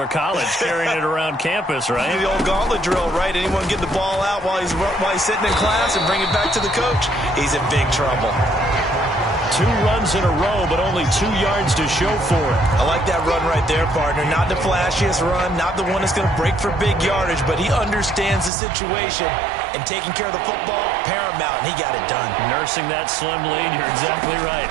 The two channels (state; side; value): drops out; left; at 18.5 s